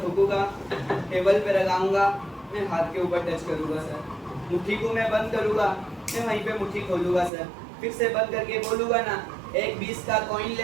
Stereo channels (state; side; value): drops out; left; at 7.3 s